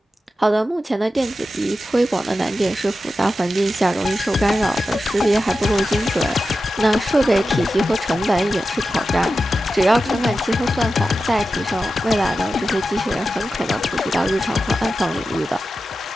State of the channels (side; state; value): both; normal; correlation 0.92